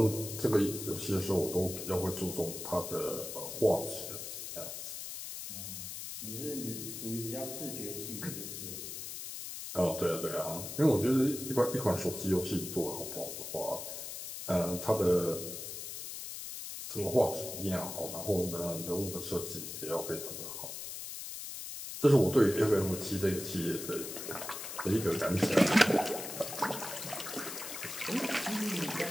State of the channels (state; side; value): noise; left; hiss, 8 dB below the sound